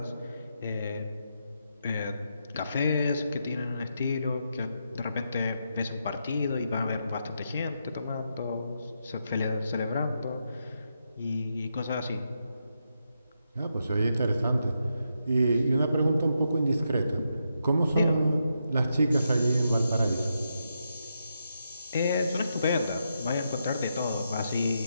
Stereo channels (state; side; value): inverted; both; correlation -0.83